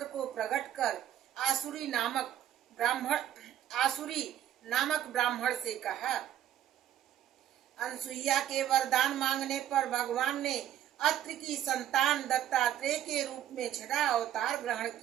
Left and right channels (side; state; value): left; quieter; 11.2 dB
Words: को प्रकट कर आसुरी नामक ब्राह्मण से कहा। अनसुईया के वरदान मांगने पर भगवान ने अत्रि की संतान दत्तात्रेय के रूप में छठा अवतार ग्रहण